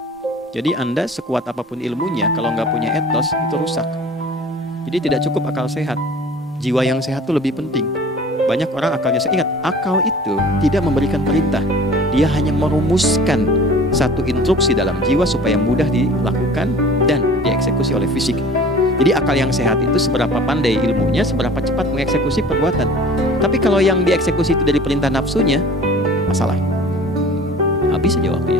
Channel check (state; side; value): normal; both; correlation 0.44